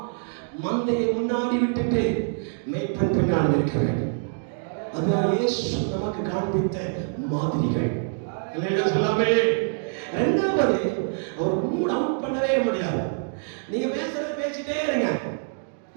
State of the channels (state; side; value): silent; left; digital silence